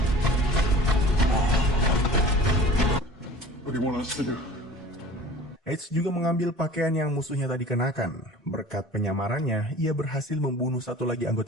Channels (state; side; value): normal; both; correlation 0.43